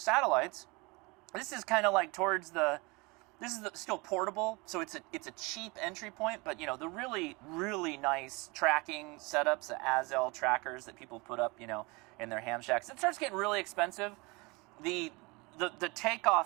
This is kind of like towards the. This is still portable, so it's a cheap entry point. But the really nice tracking setups, the Azel trackers that people put up, in their ham shacks. It starts getting really expensive. The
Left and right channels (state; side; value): quieter; left; 26.5 dB